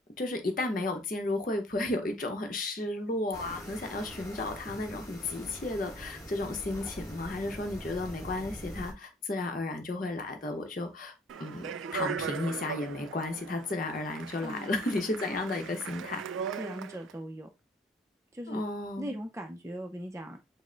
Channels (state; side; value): normal; both; correlation 0.56